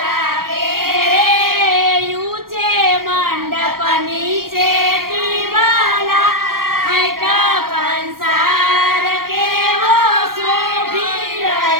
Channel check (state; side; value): late; left; 0.92 ms